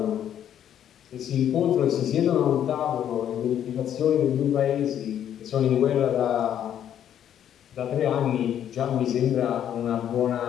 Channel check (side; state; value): right; quieter; 10.1 dB